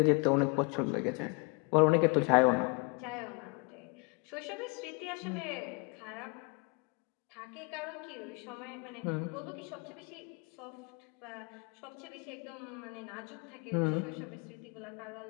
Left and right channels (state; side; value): quieter; right; 31.7 dB